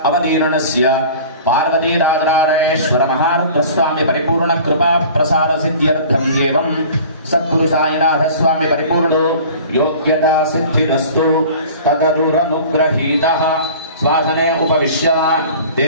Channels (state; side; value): inverted; both; correlation -0.43